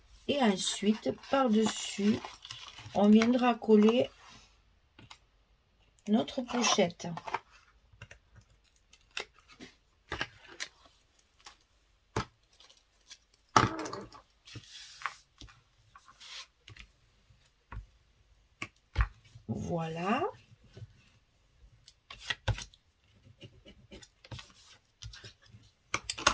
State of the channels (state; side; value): identical; both; correlation 1.00